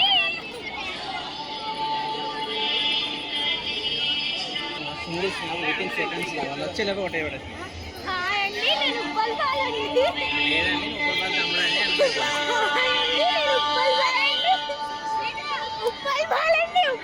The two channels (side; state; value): both; identical; correlation 1.00